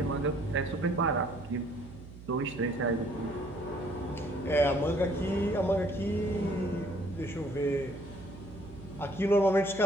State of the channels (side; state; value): right; noise; hum, 16 dB below the sound